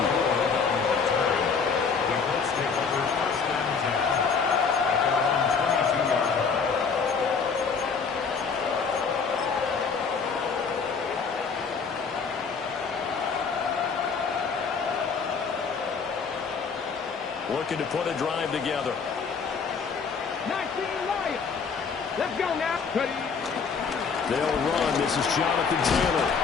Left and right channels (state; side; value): quieter; right; 5.6 dB